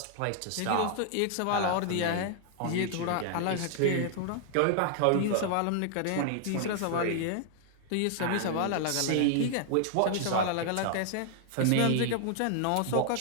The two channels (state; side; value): different; both; correlation 0.00